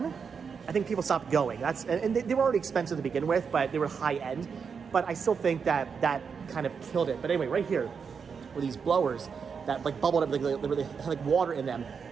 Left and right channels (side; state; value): left; quieter; 6.1 dB